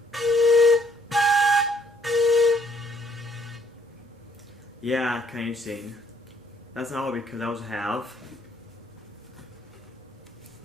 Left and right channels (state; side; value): normal; both; correlation 0.64